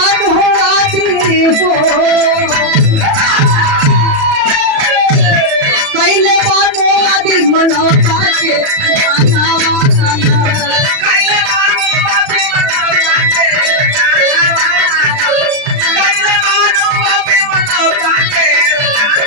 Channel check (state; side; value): late; left; 37 ms